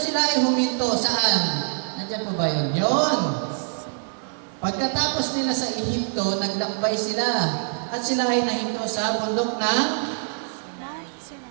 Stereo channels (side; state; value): left; silent; 62 dB below the other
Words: ay huminto. Saan? Nandiyan po ba yun? Yun. Pagkatapos nila sa Ehipto, naglakbay sila. At sila ay nahinto sa bundok ng